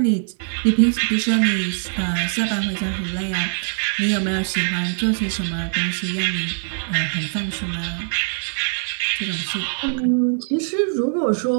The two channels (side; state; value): left; silent; 60 dB below the other